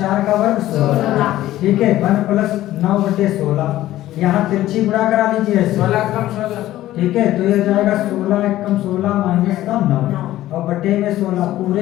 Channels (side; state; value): right; quieter; 14.6 dB